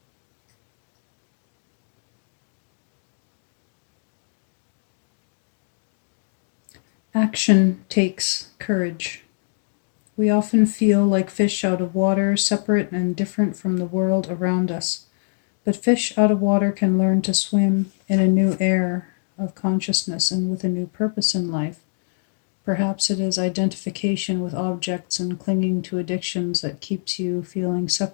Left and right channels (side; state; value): right; silent; digital silence